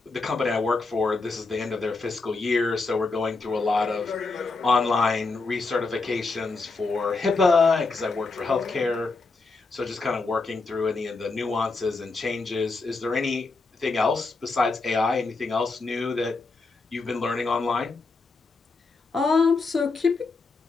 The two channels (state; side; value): quieter; right; 3.9 dB